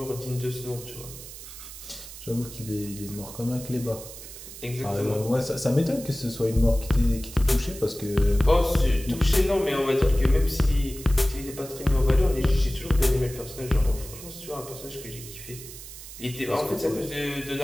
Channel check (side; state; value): right; noise; hiss, 14 dB below the sound